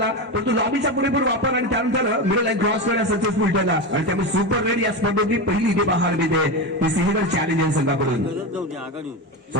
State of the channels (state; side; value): normal; both; correlation 0.18